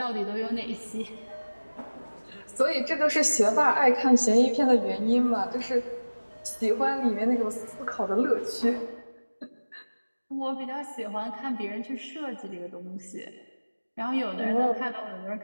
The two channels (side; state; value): both; inverted; correlation -1.00